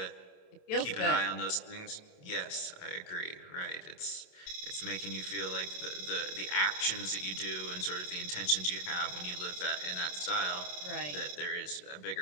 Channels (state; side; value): late; right; 27 ms